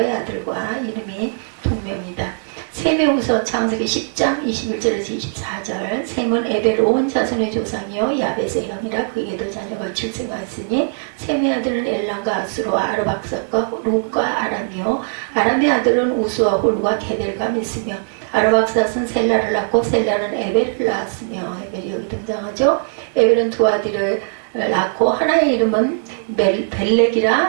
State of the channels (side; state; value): left; silent; digital silence